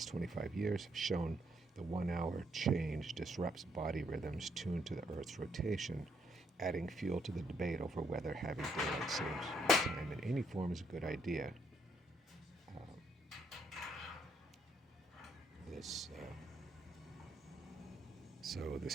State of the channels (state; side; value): normal; both; correlation 0.73